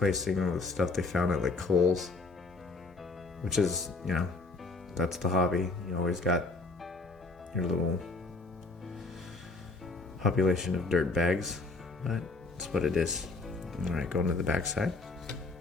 them with stuff they found at like Kohl's, which is, you know, that's the hobby. You always got your little population of dirt bags, but it's what it is. All right, going to the back side.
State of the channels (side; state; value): right; quieter; 3.4 dB